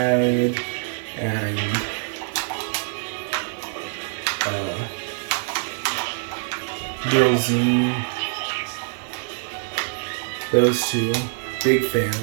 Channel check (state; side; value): silent; left; digital silence